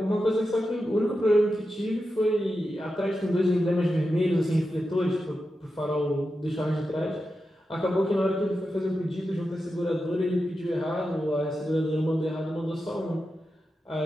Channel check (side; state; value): both; normal; correlation 0.90